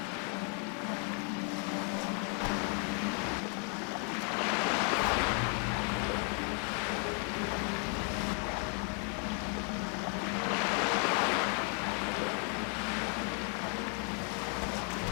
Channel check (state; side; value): quieter; right; 39.5 dB